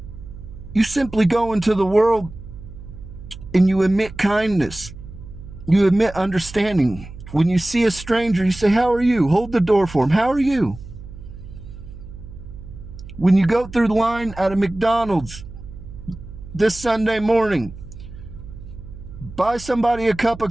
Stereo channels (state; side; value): noise; right; hum, 15 dB below the sound